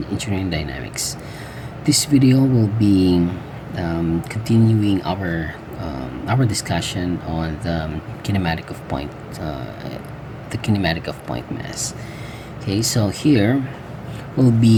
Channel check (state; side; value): identical; both; correlation 1.00